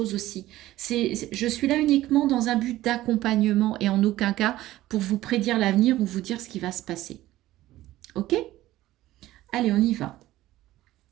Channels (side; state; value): left; quieter; 15.6 dB